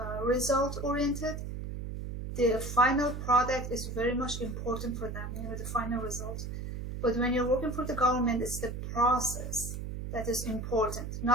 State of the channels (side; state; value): right; noise; hum, 6 dB below the sound